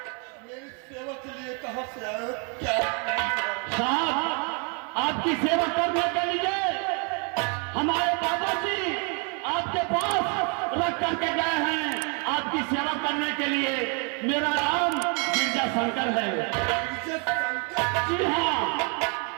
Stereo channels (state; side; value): quieter; left; 36.4 dB